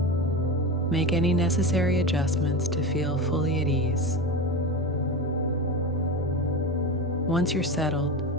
Make any necessary adjustments to feel fully at ease. Once you're settled,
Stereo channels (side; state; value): both; normal; correlation 0.23